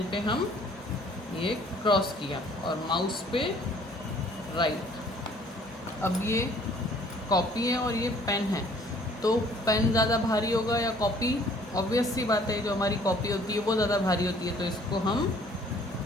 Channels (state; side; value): normal; both; correlation 0.57